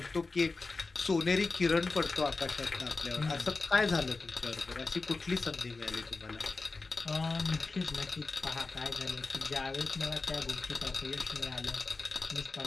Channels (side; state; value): right; quieter; 3.8 dB